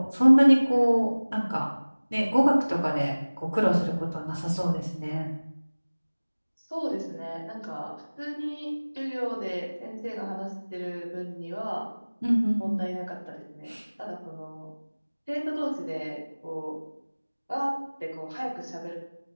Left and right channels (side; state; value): both; inverted; correlation -1.00